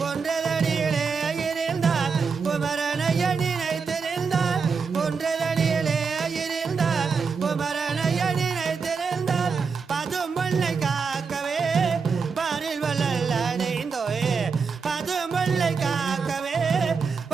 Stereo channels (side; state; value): left; quieter; 5.4 dB